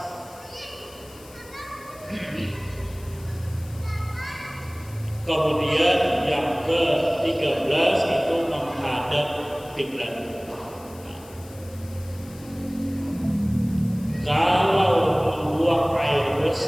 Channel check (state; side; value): noise; left; hiss, 22 dB below the sound